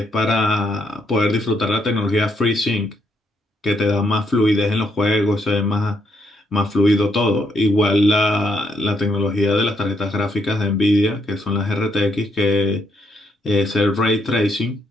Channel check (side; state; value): both; normal; correlation 0.76